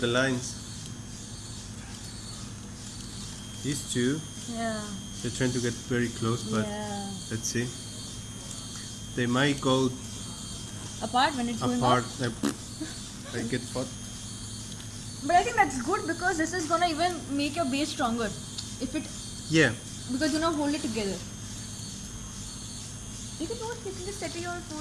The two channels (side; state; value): both; identical; correlation 1.00